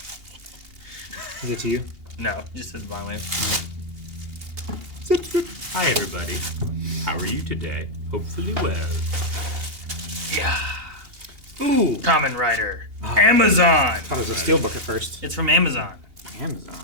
Is it to you? No, just says Blind Wave. Hi everybody. How are you today? Hopefully well. Yeah. Ooh. Common Writer. Amazon. I thought it was a steelbook at first. It's from Amazon. Amazon.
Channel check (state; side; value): late; left; 2.8 ms